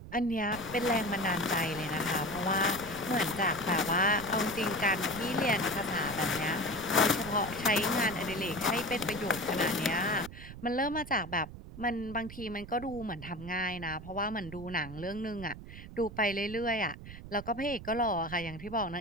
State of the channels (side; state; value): right; noise; rumble, 13 dB below the sound